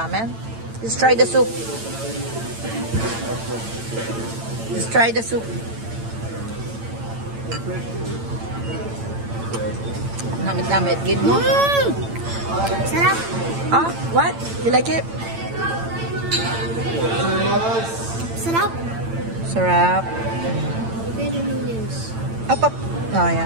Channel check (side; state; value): left; late; 8.9 ms